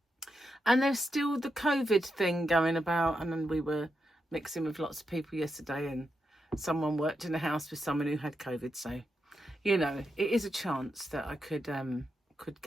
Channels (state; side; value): normal; both; correlation 0.85